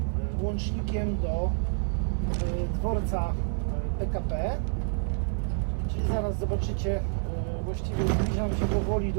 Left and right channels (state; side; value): silent; left; 59 dB below the other